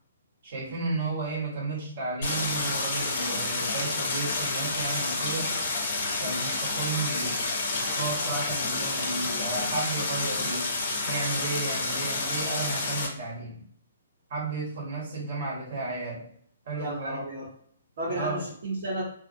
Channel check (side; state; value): both; inverted; correlation -0.53